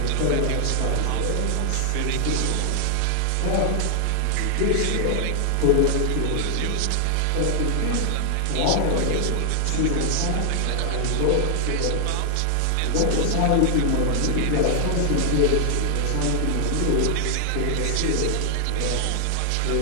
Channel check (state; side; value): different; both; correlation 0.00